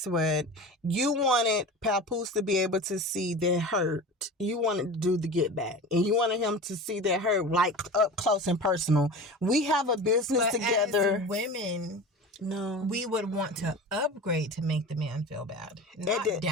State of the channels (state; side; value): normal; both; correlation 0.33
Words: what? You wanted Papoose to be able to see their hurt. You wanted to do the get back, and you wanted him to see their hurt like up close and personal. We have a business together. As women. No, we would want to upgrade to make the man feel bad, not